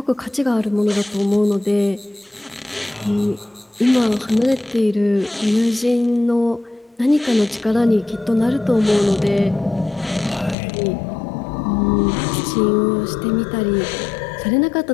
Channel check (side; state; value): right; drops out; at 10.6 s